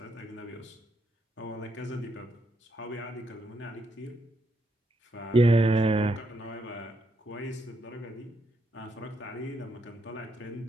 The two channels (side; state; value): both; normal; correlation 0.78